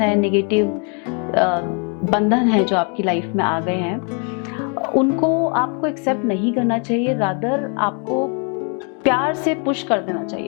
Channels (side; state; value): right; quieter; 38.2 dB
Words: नेगेटिव बंधन है जो आपकी लाइफ में आ गए हैं, उनको आपको एक्सेप्ट नहीं करना चाहिए, रादर आपको प्यार से पुश कर देना